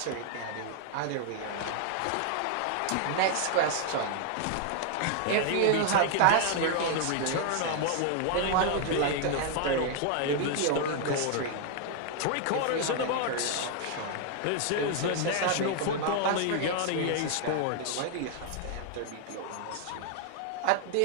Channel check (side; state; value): both; different; correlation 0.00